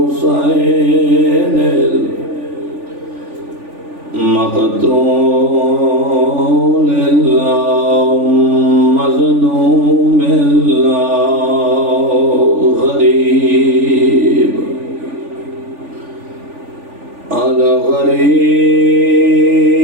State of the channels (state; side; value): late; left; 3.4 ms